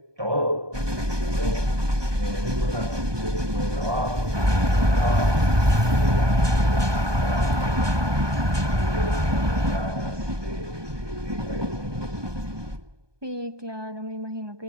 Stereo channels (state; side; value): late; left; 1.2 ms